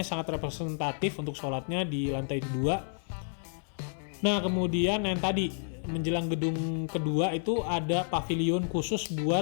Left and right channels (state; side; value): silent; right; 58 dB below the other